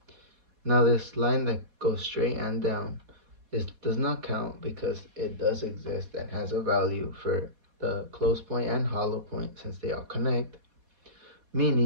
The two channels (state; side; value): late; left; 4.2 ms